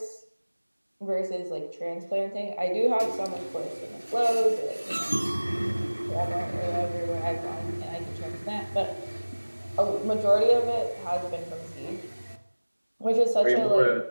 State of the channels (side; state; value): both; inverted; correlation -1.00